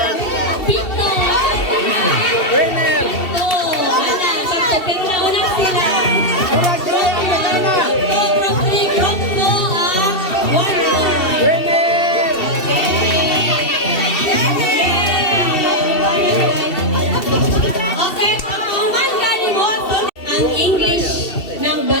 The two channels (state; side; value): late; right; 2.7 ms